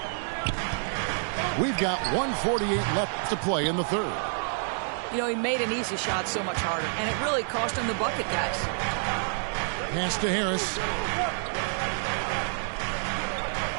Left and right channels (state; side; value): silent; left; 59 dB below the other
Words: We've got 1:48 left to play in the third. You know, he made an easy shot so much harder, and it really cost him the bucket, guys. Pass to Harris.